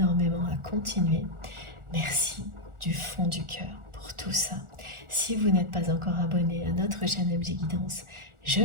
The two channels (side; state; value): left; late; 1.4 ms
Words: à continuer. Merci du fond du cœur pour tout ça. Si vous n'êtes pas encore abonné à notre chaîne MJ Guidance, je